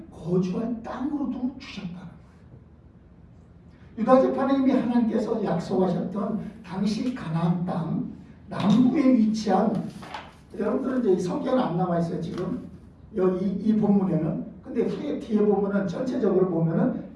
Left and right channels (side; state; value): both; identical; correlation 1.00